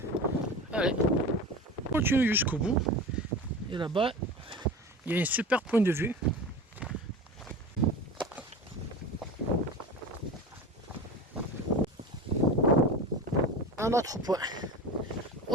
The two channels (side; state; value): both; normal; correlation 0.31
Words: Allez, on continue jusqu'au bout. Et là-bas, il y a un super point de vue. Un autre point.